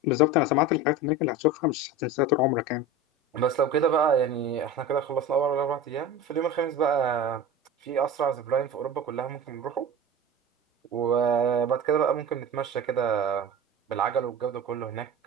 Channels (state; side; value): normal; both; correlation 0.32